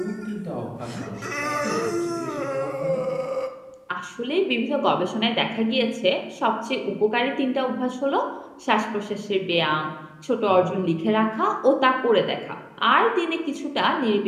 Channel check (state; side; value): identical; both; correlation 1.00